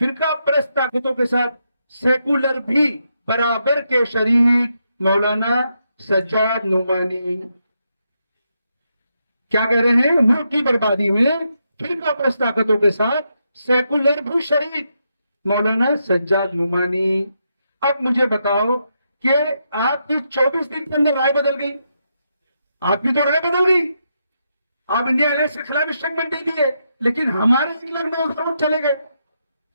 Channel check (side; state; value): both; inverted; correlation -0.82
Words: परस्त ताकतों के साथ सेकुलर भी बराबर के शरीक। मौलाना सज्जाद नुमानी क्या कह रहे हैं? मुल्क की बर्बादी में फिरका परस्त ताकतों के साथ सेकुलर भी शरीक। मौलाना सज्जाद नुमानी। अब मुझे बताओ कि आपकी 24 दिन के अंदर राय बदल गई। आपकी तो राय बदल गई, आप इंडिया अलायंस के खिलाफ स्टेटमेंट दे दिए, लेकिन हमारे 1,09,000 वोट चले गए।